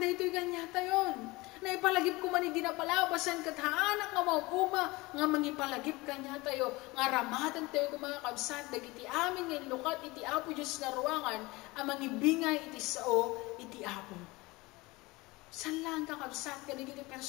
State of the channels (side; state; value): right; quieter; 22.4 dB